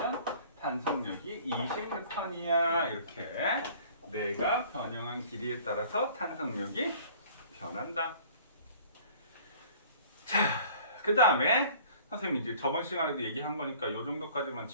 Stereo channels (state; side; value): inverted; both; correlation -0.50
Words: 탄성력이 20N이야. 이렇게 내가 변형한 길이에 따라서 탄성력이 변한다. 자, 그 다음에 선생님 이제 저번 시간에도 얘기한 거니까 이 정도까지만